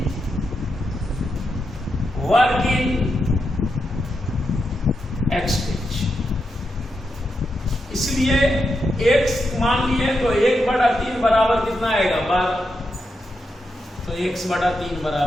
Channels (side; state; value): both; normal; correlation 0.85